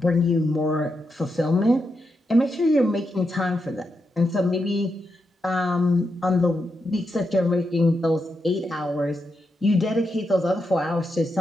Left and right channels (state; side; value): normal; both; correlation 0.85